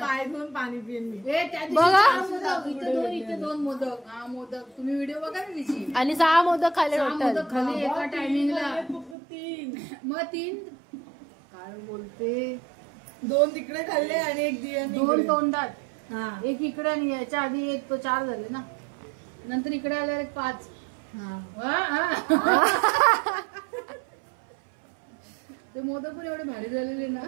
पाय धुवून पाणी पिऊन बघा. इथे दोन मोदक. हा मोदक तुम्ही व्हिडिओ बघा ना तिची. आणि 6 मोदक खाल्ले मोदक खाली एका टायमिंगला. मग 3 काय बोलते, 2 तिकडे खाल्ले आणि 1 दिया 2 तोंडात. एक इकडे आणि याच्या आधी 1 तो 4 झाले ना, नंतर इकडे आल्यावर 1 5. ते मोदक पण एवढे भारी झालेले ना,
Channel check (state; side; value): drops out; left; at 9.2 s